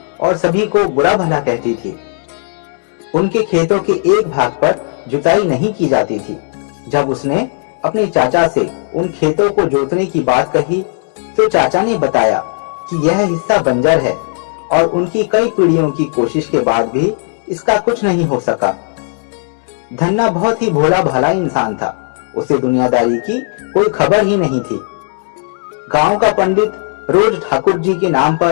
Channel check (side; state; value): right; silent; 64 dB below the other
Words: और सभी को बुरा भला कहती थी। उनके खेतों के एक भाग पर जुताई नहीं की जाती थी। जब उसने अपने चाचा से उन खेतों को जोतने की बात कही तो चाचा ने बताया कि यह हिस्सा बंजर है और उनकी कई पीढ़ियों की कोशिश के बाद भी इसका कुछ नहीं हो सका। धन्ना बहुत ही भोला भाला इंसान था। उसे दुनियादारी की कोई खबर ही नहीं थी। गांव का पंडित रोज ठाकुर जी के नाम